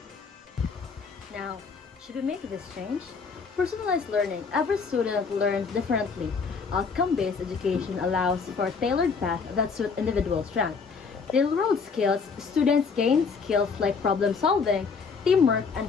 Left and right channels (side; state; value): right; quieter; 5.3 dB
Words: Now, should we make this change? Personalized learning. Every student learns differently. Outcome-based education allows for a tailored path that suits individual strengths. Real-world skills. Students gain skills like problem solving, teamwork,